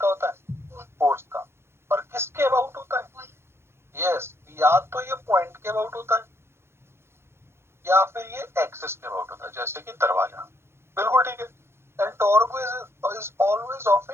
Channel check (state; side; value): late; left; 0.12 ms